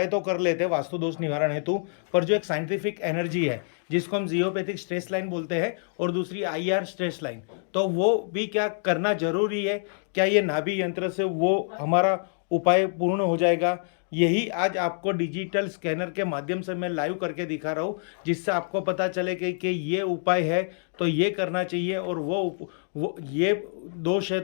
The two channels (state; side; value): silent; right; digital silence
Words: तो कर लेते हैं वास्तु दोष निवारण हेतु, पर जो एक साइंटिफिक एनर्जी है जिसको हम जियोपैथिक स्ट्रेस लाइन बोलते हैं और दूसरी IR स्ट्रेस लाइन, तो वो भी क्या करना जरूरी है? क्या ये नाभि यंत्र से वो हमारा उपाय पूर्ण हो जाएगा? यही आज आपको डिजिटल स्कैनर के माध्यम से मैं लाइव करके दिखा रहा हूँ, जिससे आपको पता चले कि ये उपाय है तो ये करना चाहिए, और वो ये दोष है